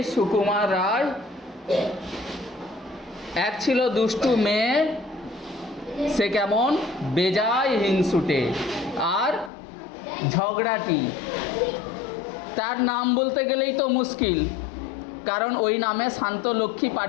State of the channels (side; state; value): right; drops out; at 9.5 s